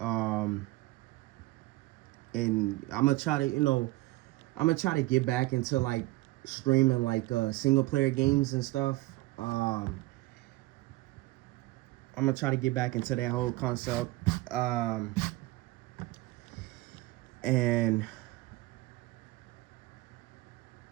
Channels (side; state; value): left; quieter; 19.5 dB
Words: And I'm gonna try to get back into like streaming like single player games and stuff. I'm gonna try to get back into that whole concept. And